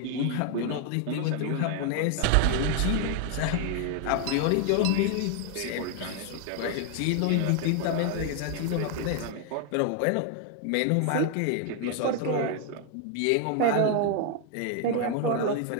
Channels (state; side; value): different; both; correlation 0.00